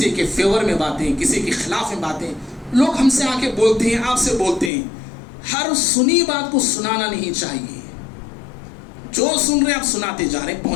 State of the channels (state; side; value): drops out; right; at 4.7 s